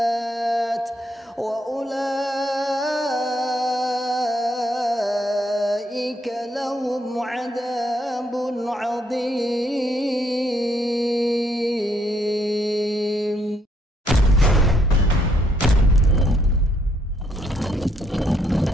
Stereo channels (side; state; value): both; normal; correlation 0.72